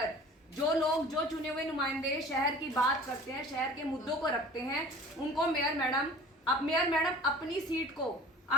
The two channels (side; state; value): both; normal; correlation 0.44